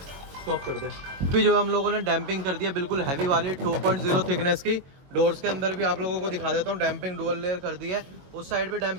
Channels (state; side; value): late; left; 22 ms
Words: स्टॉप कर दे। अभी जो हम लोगों ने डैम्पिंग कर दिया बिल्कुल हैवी वाली 2.0 थिकनेस की। डोर्स के अंदर भी आप लोगों को दिखा देता हूँ, डैम्पिंग डुअल लेयर कर दी है। उस साइड पे